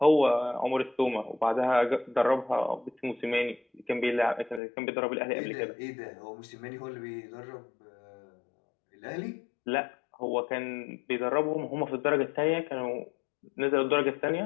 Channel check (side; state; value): right; drops out; at 4.6 s